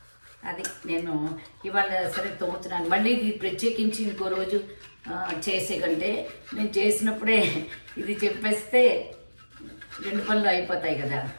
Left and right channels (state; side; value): inverted; both; correlation -1.00